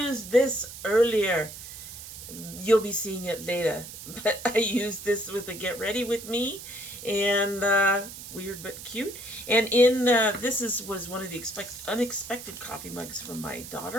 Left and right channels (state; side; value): noise; right; hiss, 12 dB below the sound